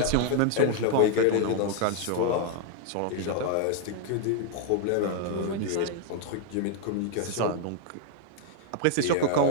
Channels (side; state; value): both; different; correlation 0.00